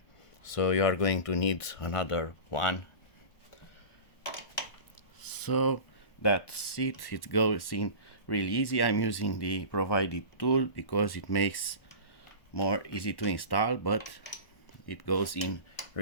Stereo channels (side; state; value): right; late; 1.1 ms